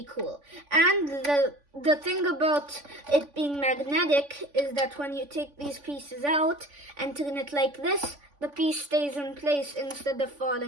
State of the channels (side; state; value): left; late; 3.5 ms